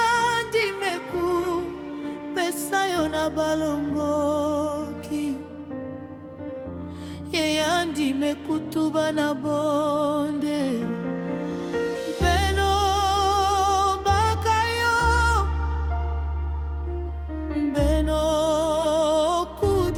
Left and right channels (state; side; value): identical; both; correlation 1.00